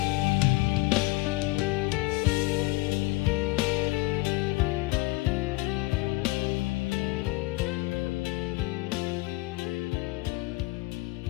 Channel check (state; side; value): quieter; right; 21.6 dB